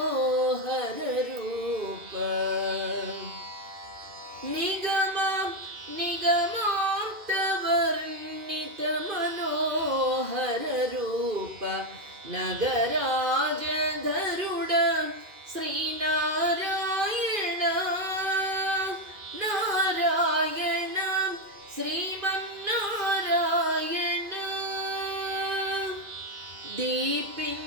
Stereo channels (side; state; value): left; late; 2.5 ms